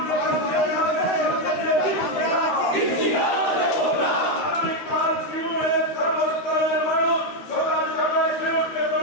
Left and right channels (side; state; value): right; late; 13 ms